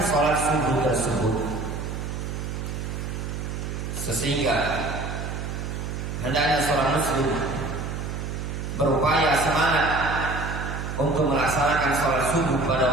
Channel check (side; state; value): right; noise; hum, 5 dB below the sound